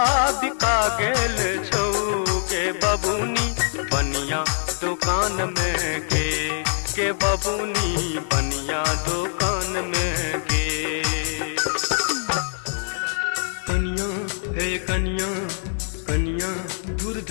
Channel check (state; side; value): silent; right; 63 dB below the other